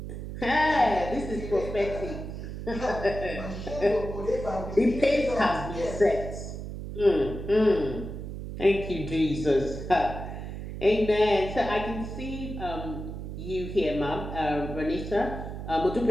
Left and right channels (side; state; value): right; noise; hum, 8 dB below the sound